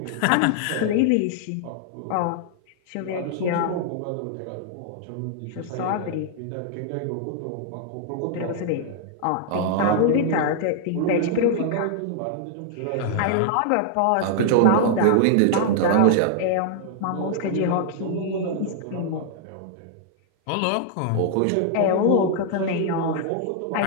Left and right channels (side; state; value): both; different; correlation -0.01